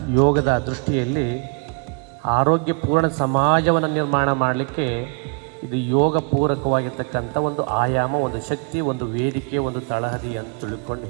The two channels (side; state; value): left; quieter; 39.5 dB